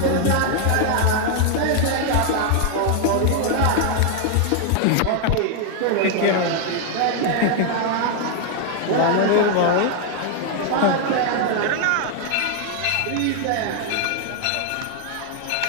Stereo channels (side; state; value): both; different; correlation 0.00